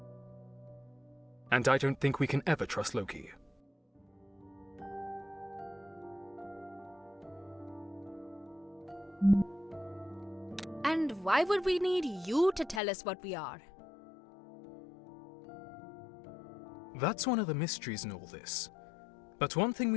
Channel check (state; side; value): drops out; right; at 12.8 s